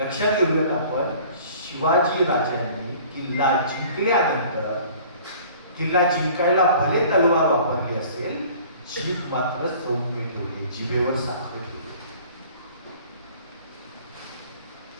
घेऊयात आपण, शिवाजी राजांनी किल्ला जिंकल्यानंतर किल्ला जिंकायला भले तलवार वापरली असेल, जीभ मात्र सौम्य ठेवली, जिभेवर साखर ठेवली.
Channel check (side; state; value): both; inverted; correlation -0.49